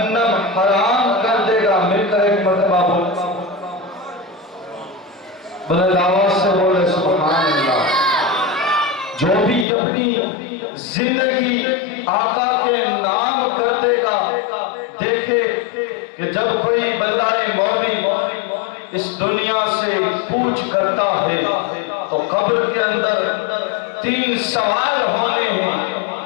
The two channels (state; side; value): drops out; right; at 9.7 s